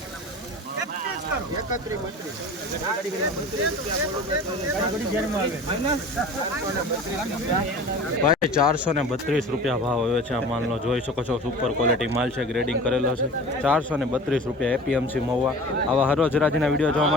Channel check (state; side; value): normal; both; correlation 0.39